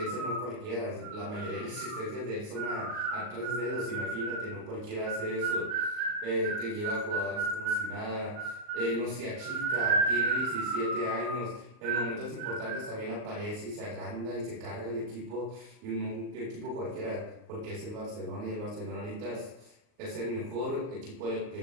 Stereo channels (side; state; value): left; late; 39 ms